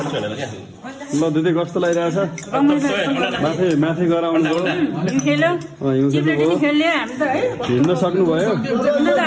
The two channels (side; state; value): both; identical; correlation 1.00